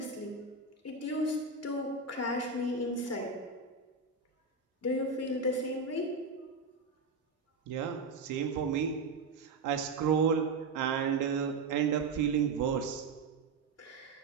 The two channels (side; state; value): left; quieter; 4.1 dB